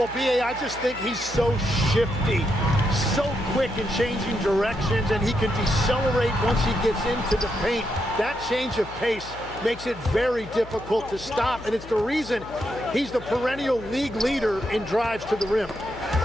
B.A., I just think he's so shifty, so quick in changing directions, and he can decelerate once he gets into the paint. That change of pace makes it very difficult to stop, and it's the reason he's the perennial league leader in drives to the rim.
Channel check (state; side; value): noise; left; hum, 16 dB below the sound